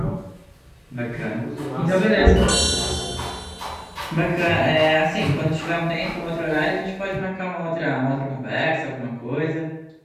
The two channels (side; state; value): both; identical; correlation 1.00